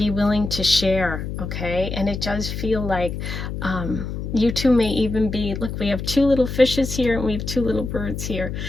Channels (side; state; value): left; noise; hum, 5 dB below the sound